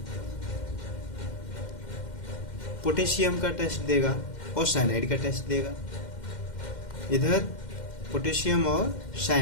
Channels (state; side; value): late; right; 2.1 ms